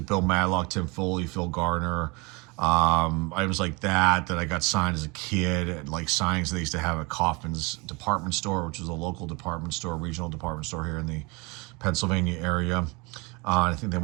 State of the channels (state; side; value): quieter; left; 27.5 dB